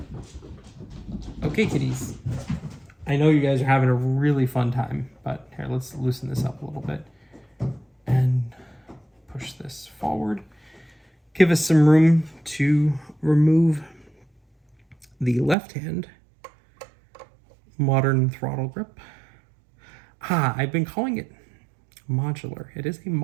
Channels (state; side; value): drops out; left; at 15.6 s